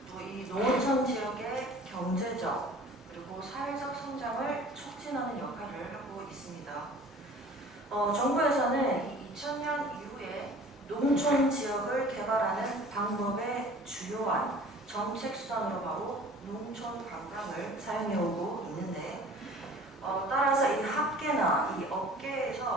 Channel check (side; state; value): both; normal; correlation 0.47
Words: 또 이 농어촌 지역의 경제적 그리고 사회적 성장을 촉진하는 역할을 하고 있습니다. 정부에서는 2000년 이후에 농촌 지역을 개발하는 방법의 주요한 정책 수단으로 바로 농촌 관광을 사용해오고 있는데 따라서 이 학계나 이